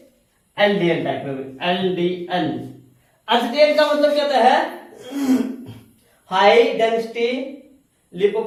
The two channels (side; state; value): both; identical; correlation 1.00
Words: LDL टाइप में, LDL। HDL का मतलब क्या होता है? हाई डेंसिटी